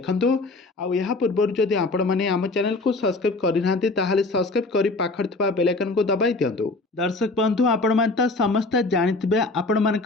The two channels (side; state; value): right; quieter; 3.3 dB